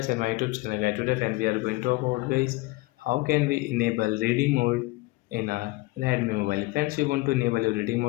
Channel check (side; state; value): right; quieter; 21.8 dB